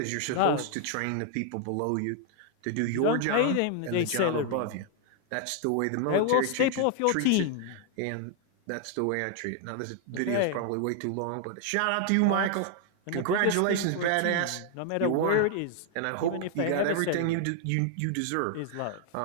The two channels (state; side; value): different; both; correlation 0.00